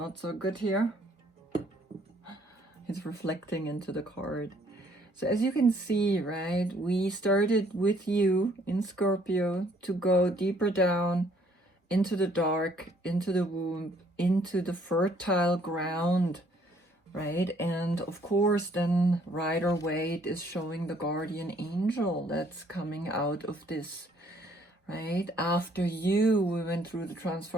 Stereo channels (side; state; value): both; normal; correlation 0.64